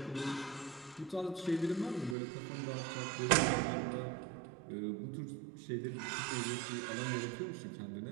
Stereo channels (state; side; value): drops out; left; at 2.1 s